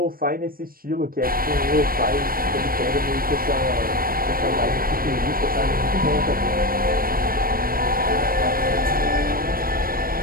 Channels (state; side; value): late; left; 0.42 ms